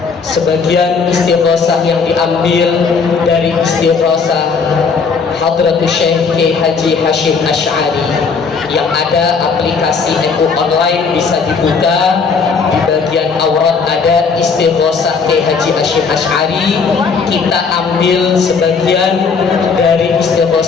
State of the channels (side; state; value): right; quieter; 5.2 dB